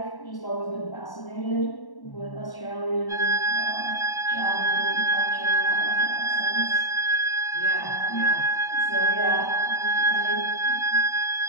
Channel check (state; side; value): late; right; 1.1 ms